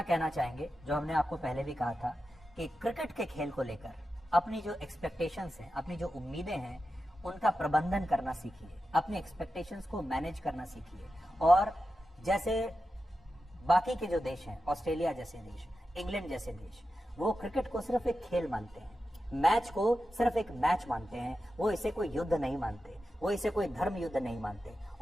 कहना चाहेंगे, जो हमने आपको पहले भी कहा था, कि क्रिकेट के खेल को लेकर अपनी जो एक्सपेक्टेशंस हैं, अपनी जो उम्मीदें हैं, उनका प्रबंधन करना सीखिए, अपनी एक्सपेक्टेशंस को मैनेज करना सीखिए। और जैसे बाकी के जो देश हैं, ऑस्ट्रेलिया जैसे देश, इंग्लैंड जैसे देश, वो क्रिकेट को सिर्फ एक खेल मानते हैं, मैच को सिर्फ एक मैच मानते हैं, वो इसे कोई युद्ध नहीं मानते, वो इसे कोई धर्म युद्ध नहीं मानते।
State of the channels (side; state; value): both; normal; correlation 0.91